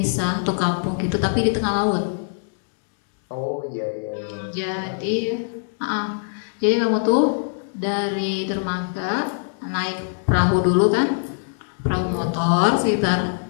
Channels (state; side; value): silent; right; digital silence